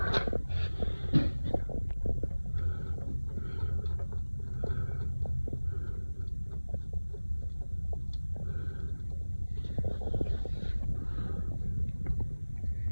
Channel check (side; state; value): both; inverted; correlation -1.00